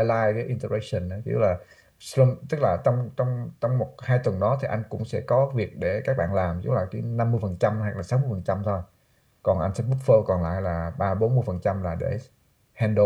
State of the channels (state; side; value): identical; both; correlation 1.00